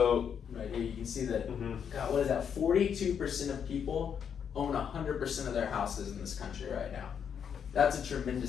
right here you can see that, mm-hmm. God, what is that? 42% of people own 100% of their houses in this country right now. That's a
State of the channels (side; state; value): right; quieter; 7.7 dB